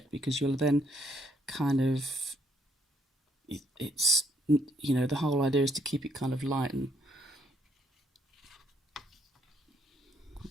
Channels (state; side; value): normal; both; correlation 0.70